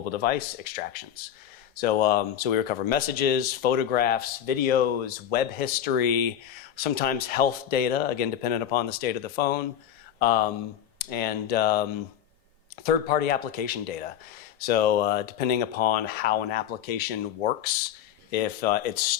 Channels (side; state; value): right; quieter; 10.1 dB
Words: device extractions. So we recover messages, photographs, videos, web history, sometimes health data, again, dependent upon the state of the phone, and third-party application data. So depending upon how an application works, if it